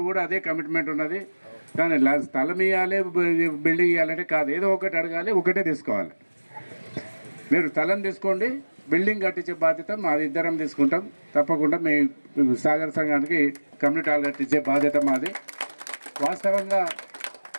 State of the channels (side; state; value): both; inverted; correlation -1.00